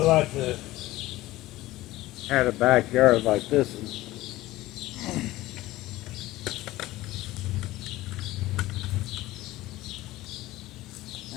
like to have a backyard like this.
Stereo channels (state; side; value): quieter; right; 17.3 dB